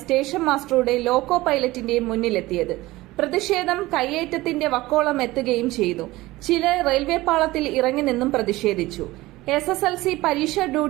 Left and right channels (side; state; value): left; quieter; 18.8 dB